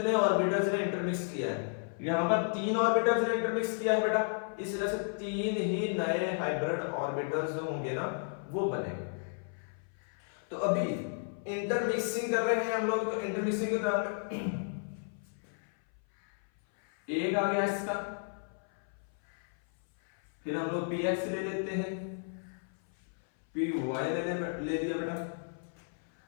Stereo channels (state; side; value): silent; right; 56 dB below the other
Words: ऑर्बिटल्स ने इंटरमिक्स किया है। यहां पर 3 ऑर्बिटल्स ने इंटरमिक्स किया है बेटा, इस तरह से 3 ही नए हाइब्रिड ऑर्बिटल्स जो होंगे ना वो बनेंगे। तो अभी इंटरमिक्सिंग कर रहे हैं हम लोग, तो इंटरमिक्सिंग के दौरान एक आ गया इसका, फिर हम लोग px ले लेते हैं, py ले दिया बेटा।